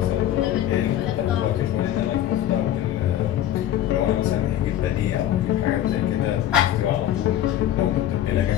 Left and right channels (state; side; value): quieter; right; 12.0 dB